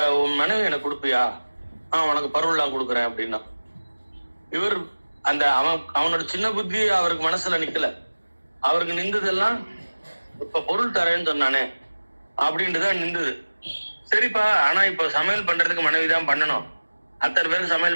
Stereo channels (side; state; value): both; inverted; correlation -1.00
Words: உன் மனைவி எனக்கு கொடுப்பியா? உனக்கு பருவெல்லாம் கொடுக்குறேன் அப்படின்னா. இவர் அவனோட சின்ன புத்தி அவருக்கு மனசுல நிக்கல. அவருக்கு நின்றதெல்லாம் இப்ப பொருள் தரேன்னு சொன்னானே அப்படின்ட்டுதான் நின்றுது. சரிப்பா, ஆனா இப்ப சமையல் பண்றதுக்கு மனைவி தான் பண்ணணும், அத்தனை பேருக்கு